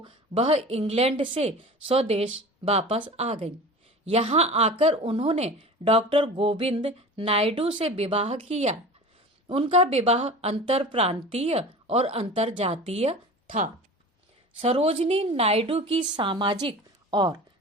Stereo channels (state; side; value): normal; both; correlation 0.36